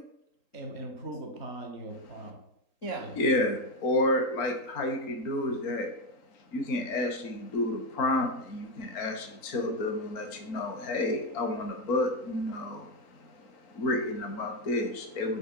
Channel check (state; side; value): late; right; 3.8 ms